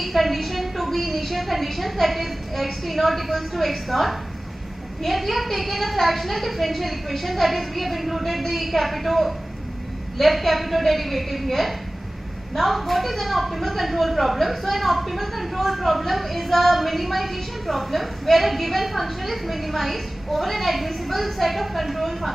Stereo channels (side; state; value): both; normal; correlation 0.98